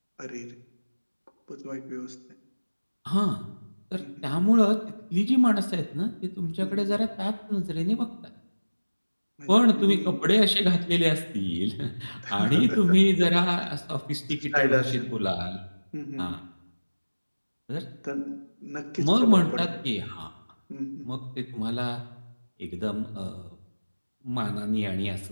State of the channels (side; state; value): both; inverted; correlation -1.00